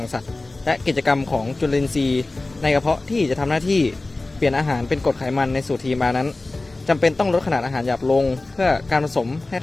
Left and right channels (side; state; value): right; quieter; 3.1 dB